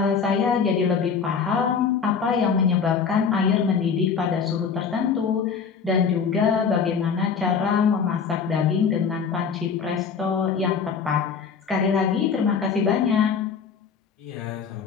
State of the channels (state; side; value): quieter; right; 6.2 dB